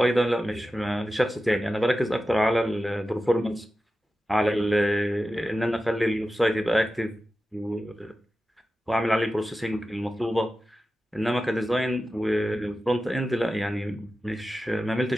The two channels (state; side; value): normal; both; correlation 0.93